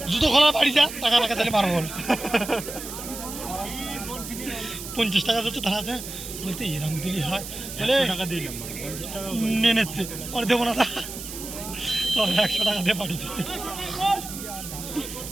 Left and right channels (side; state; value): right; noise; hiss, 10 dB below the sound